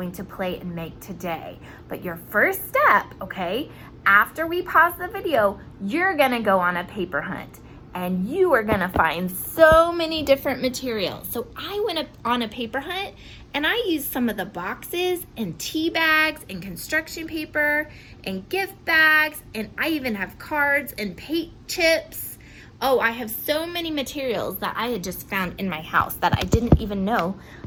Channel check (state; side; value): identical; both; correlation 1.00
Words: to play and make today. But your first step, okay, after we pause the video, you're gonna go on a paper hunt. And you are gonna find so many different materials. So I went on a paper hunt and I used some of the boxes and tea bags and construction paper and gift bags, and I even have cards and paint chips. Oh, I have so many materials that I had just found in my house that I didn't even know